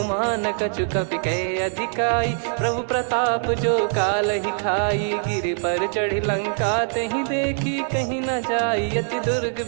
कछु कपि कहे अधिकाई, प्रभु प्रताप जो काल ही खाई। गिर पर चढ़ी लंका तहि देखी, कहीं न जाई अति दुर्ग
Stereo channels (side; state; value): left; silent; digital silence